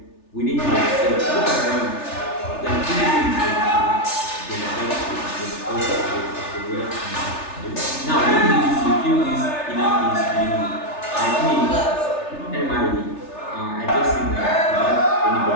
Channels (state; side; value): late; right; 3.4 ms